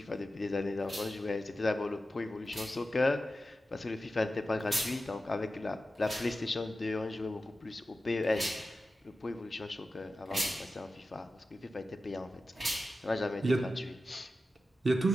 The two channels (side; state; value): both; normal; correlation 0.93